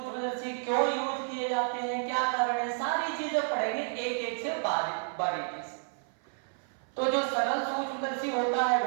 क्यों यूज किए जाते हैं, क्या कारण है, सारी चीजें पढ़ेंगे एक एक से बारीकी से। तो जो सरल सूक्ष्मदर्शी होता है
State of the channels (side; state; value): left; silent; 55 dB below the other